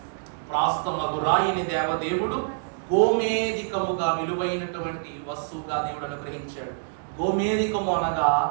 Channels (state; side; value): silent; left; digital silence